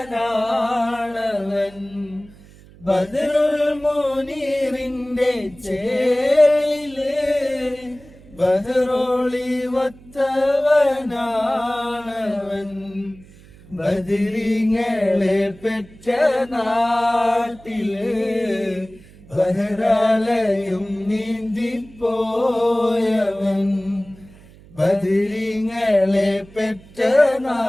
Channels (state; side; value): noise; right; hum, 23 dB below the sound